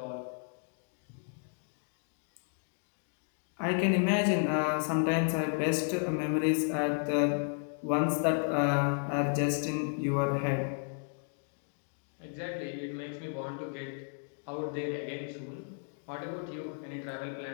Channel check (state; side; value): silent; right; 56 dB below the other